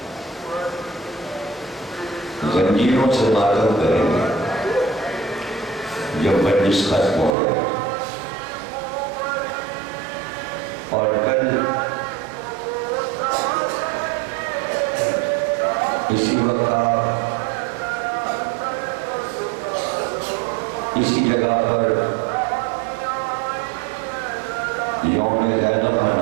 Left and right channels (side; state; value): left; drops out; at 7.4 s